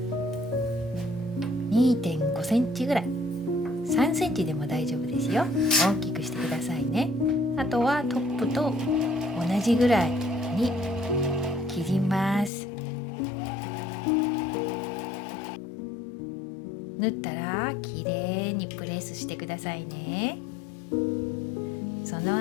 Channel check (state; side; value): drops out; right; at 12.5 s